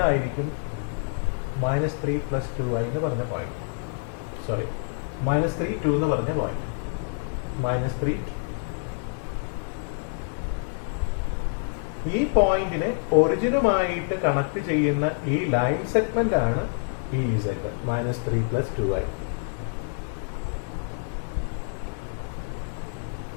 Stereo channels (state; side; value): silent; right; 60 dB below the other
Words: -3 + 2i എന്ന് പറഞ്ഞ പോയിന്റ്. സോറി, -3 2 എന്ന് പറഞ്ഞ പോയിന്റ്. -3 ഈ പോയിന്റിനെ ഒറിജിനുമായിട്ട് കണക്ട് ചെയ്യുന്ന ഈ ലൈൻ സെഗ്മെന്റ് ആണ് ഈ z -3 + 2i.